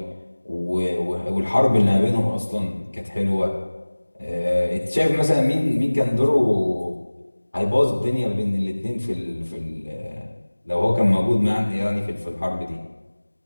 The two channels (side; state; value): both; inverted; correlation -1.00